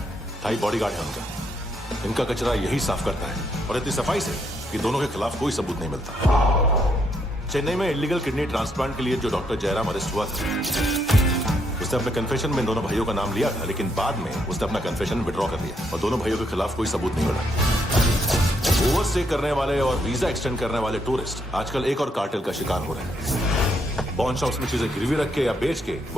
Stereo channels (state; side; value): normal; both; correlation 0.75